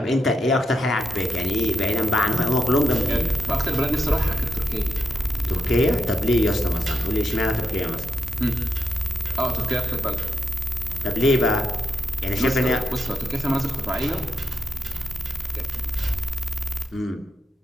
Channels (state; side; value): normal; both; correlation 0.85